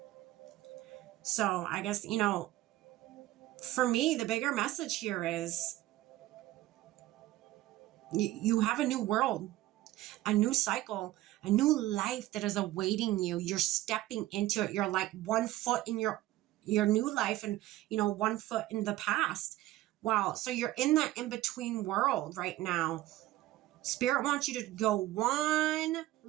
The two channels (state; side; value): quieter; left; 16.1 dB